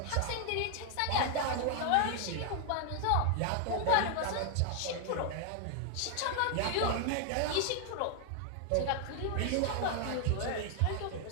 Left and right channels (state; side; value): different; both; correlation 0.00